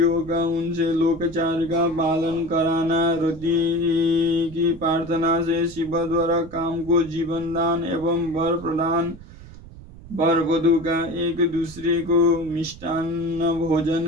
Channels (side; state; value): right; noise; rumble, 18 dB below the sound